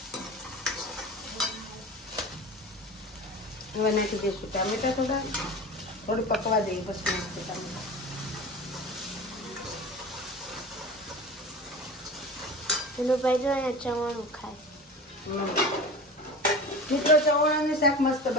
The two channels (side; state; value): both; normal; correlation 0.33